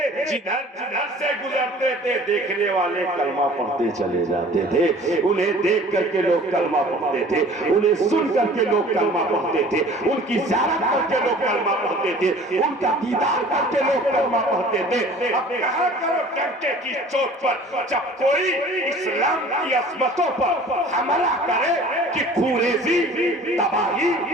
جدھر جدھر سے گزرتے تھے دیکھنے والے کلمہ پڑھتے چلے جاتے تھے، انہیں دیکھ کر کے لوگ کلمہ پڑھتے تھے، انہیں سن کر کے لوگ کلمہ پڑھتے تھے، ان کی زیارت کر کے لوگ کلمہ پڑھتے تھے، ان کا دیدار کر کے لوگ کلمہ پڑھتے تھے۔ اب کہا کرو ڈنکے کی چوٹ پر جب کوئی اسلام کی عظمتوں پر حملہ کرے کہ خوریزی، تباہی،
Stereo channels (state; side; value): normal; both; correlation 0.47